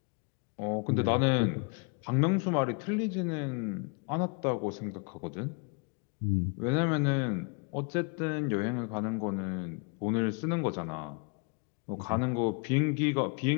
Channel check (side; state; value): right; quieter; 35.3 dB